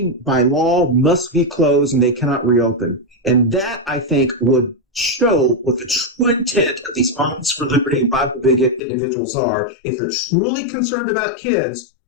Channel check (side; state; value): right; drops out; at 8.8 s